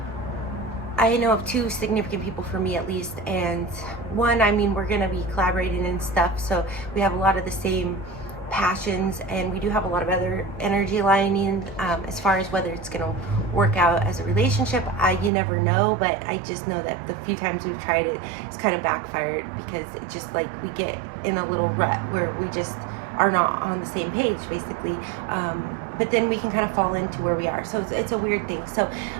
I know of two significant people for me at least, and one, I mean, we're going to be collaborating and stuff, so we have a lot of the same passions, and we do have a lot of other energy aligning. As far as whether it's going to work out as a relationship, you never know, but I just know that the few times we've tried it, it's kind of backfired, because it just, like, we get in a little rut where we just are not on the same page, basically. But then we can kind of fall into where we are, so it's a weird thing. So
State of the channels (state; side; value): drops out; left; at 15.3 s